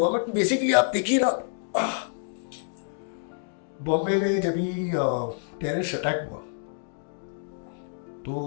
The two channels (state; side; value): silent; right; digital silence